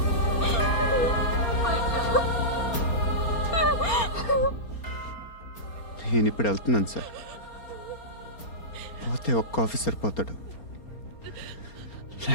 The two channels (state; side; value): late; right; 4.3 ms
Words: నేను ఇప్పుడు వెళ్తున్నాను సార్. పోతే ఒక్క ఆఫీసర్ పోతాడు,